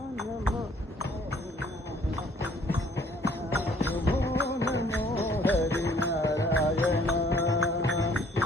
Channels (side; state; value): both; normal; correlation 0.59